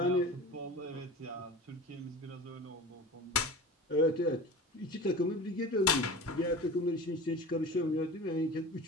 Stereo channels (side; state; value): both; normal; correlation 0.35